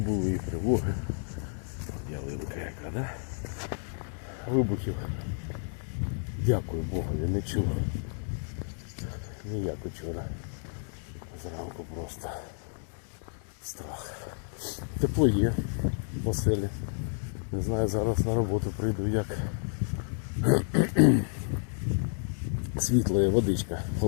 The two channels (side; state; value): right; silent; 57 dB below the other